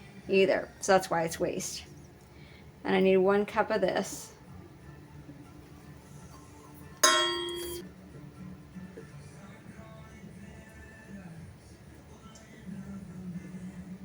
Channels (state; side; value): identical; both; correlation 1.00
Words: either. So that's why it's waste. And I need 1 cup of this.